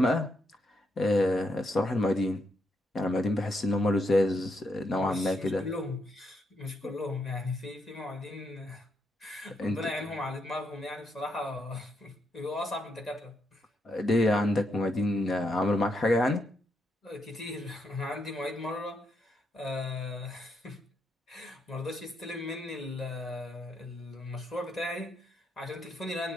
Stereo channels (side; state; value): both; normal; correlation 0.79